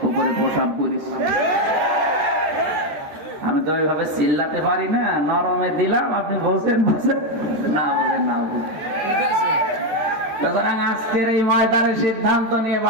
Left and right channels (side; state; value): left; late; 13 ms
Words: উপরে প্রসাব করিস। আমি তো ওইভাবে চিল্লাতে পারি না, নরমে দিলাম, আপনি বলছেন না বলেন না বলেন। সুতরাং আজকের এই ময়দানে সিদ্ধান্ত নিয়ে